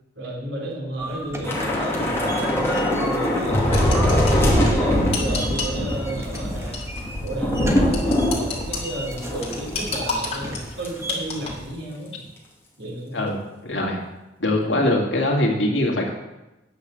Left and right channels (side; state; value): both; normal; correlation 0.59